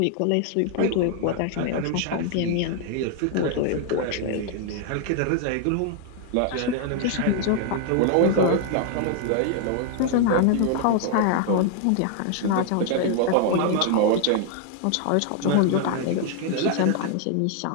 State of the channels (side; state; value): both; different; correlation 0.00